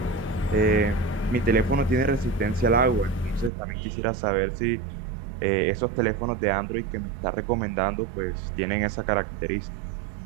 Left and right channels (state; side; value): drops out; left; at 3.5 s